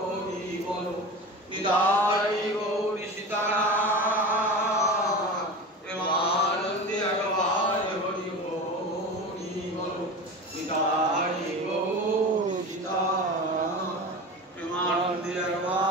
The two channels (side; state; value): both; normal; correlation 0.30